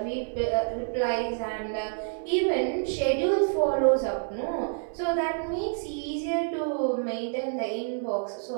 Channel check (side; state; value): left; silent; 59 dB below the other